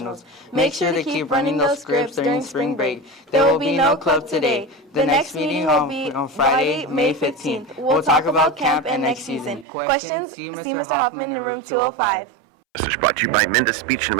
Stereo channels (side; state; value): left; drops out; at 9.7 s